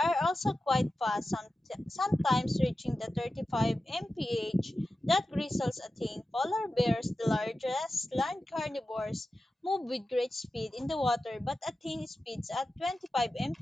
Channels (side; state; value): both; normal; correlation 0.93